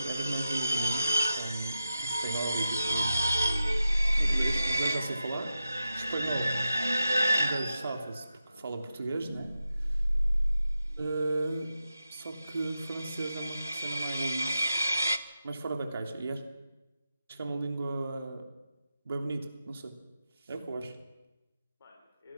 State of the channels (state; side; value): inverted; both; correlation -0.90